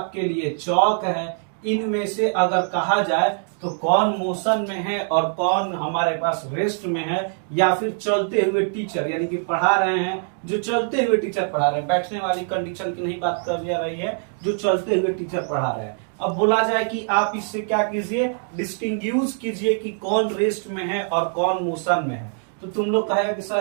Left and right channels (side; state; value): left; silent; 61 dB below the other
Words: लिए चौक है, इनमें से अगर कहा जाए तो कौन मोशन में है और कौन हमारे पास रेस्ट में है, या फिर चलते हुए टीचर यानी कि पढ़ा रहे हैं, जो चलते हुए टीचर पढ़ा रहे हैं, बैठने वाली कंडीशन की नहीं बात कर जा रही है, जो चलते हुए टीचर पढ़ा रहे हैं। अब बोला जाए कि आप इससे क्या कीजिए, डिस्टिंग्विश कीजिए कि कौन रेस्ट में है और कौन मोशन में है। तो तुम लोग कहेगा कि